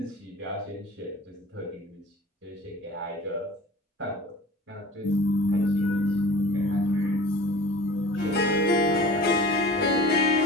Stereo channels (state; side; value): normal; both; correlation 0.41